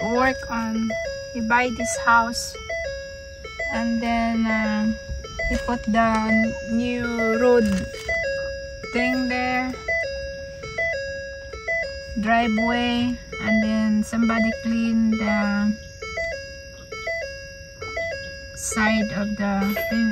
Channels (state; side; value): identical; both; correlation 1.00